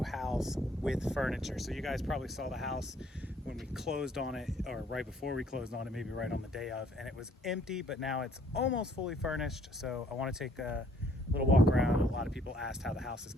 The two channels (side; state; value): both; normal; correlation 0.63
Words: house with furniture. So you guys probably saw the house when we closed on it, or right before we closed on it, maybe right on the day of, and it was empty, but now it's almost fully furnished. So I wanna take a little walk around. A lot of people asked how the house is